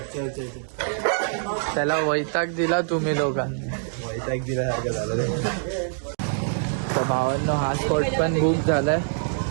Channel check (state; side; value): silent; left; digital silence